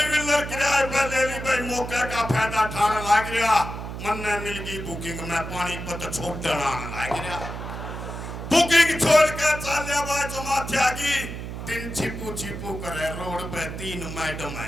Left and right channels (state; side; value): noise; right; hum, 8 dB below the sound